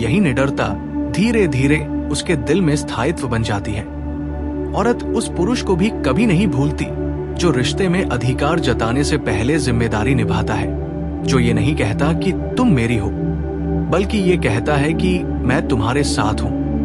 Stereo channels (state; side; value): identical; both; correlation 1.00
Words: निडरता धीरे धीरे उसके दिल में स्थायित्व बन जाती है। औरत उस पुरुष को भी कभी नहीं भूलती जो रिश्ते में अधिकार जताने से पहले जिम्मेदारी निभाता है, जो ये नहीं कहता कि तुम मेरी हो, बल्कि ये कहता है कि मैं तुम्हारे साथ हूं।